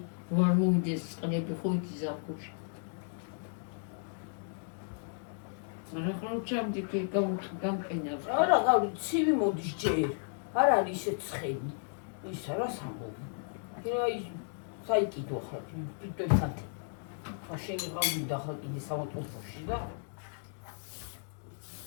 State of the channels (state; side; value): silent; right; digital silence